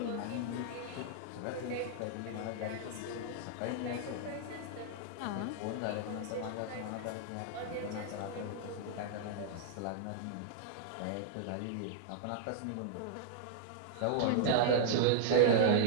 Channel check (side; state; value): both; different; correlation -0.01